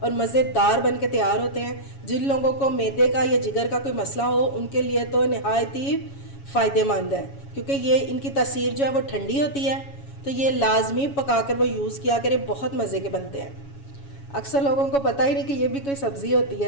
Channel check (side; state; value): right; late; 7.2 ms